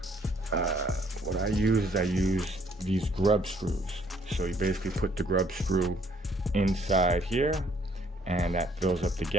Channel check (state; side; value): normal; both; correlation 0.64